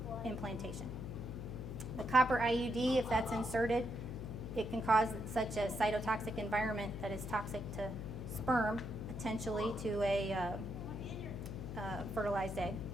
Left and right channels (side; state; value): left; noise; hum, 7 dB below the sound